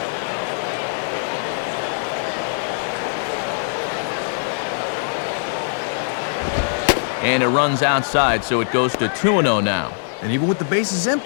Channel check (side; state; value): right; silent; digital silence